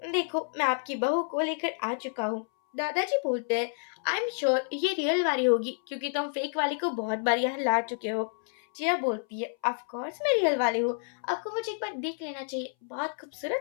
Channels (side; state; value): right; silent; 58 dB below the other